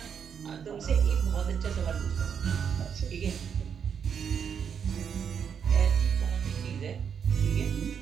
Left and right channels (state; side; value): quieter; left; 7.3 dB